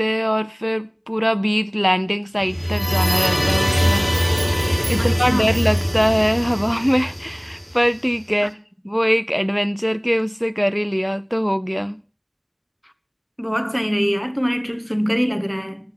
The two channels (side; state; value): both; identical; correlation 1.00